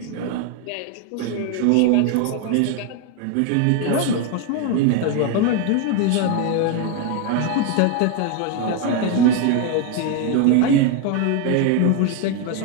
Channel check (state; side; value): different; both; correlation 0.01